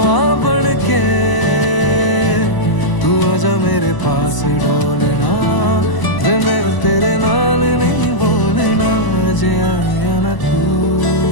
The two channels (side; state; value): right; late; 1.0 ms